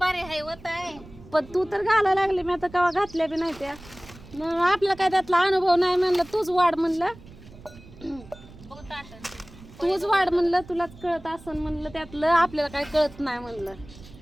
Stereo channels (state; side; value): noise; right; rumble, 20 dB below the sound